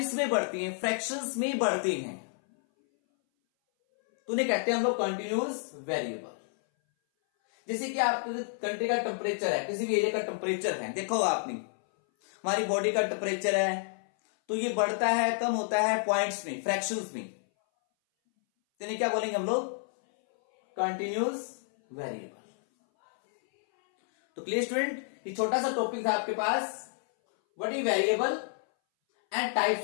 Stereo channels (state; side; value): silent; right; 58 dB below the other